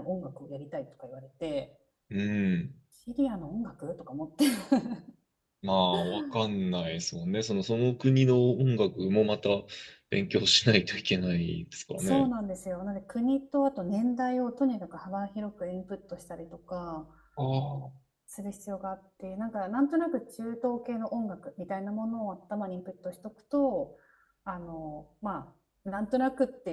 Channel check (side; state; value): both; identical; correlation 1.00